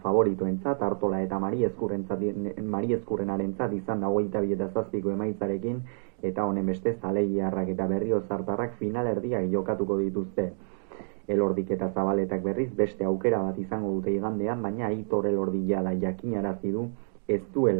Artola eta Mari Ezkurrenarentzat izan da 22-7 emaitzarekin, eta honen beste Zaleiarrak eta Berriozartarrak finalerdiak jokatuko dituzte. Elordik eta Zabaletak berriz beste aukera bat izango dute igandean, baina Aitor Elordi jada jakinarazi du ez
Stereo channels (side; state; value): left; silent; digital silence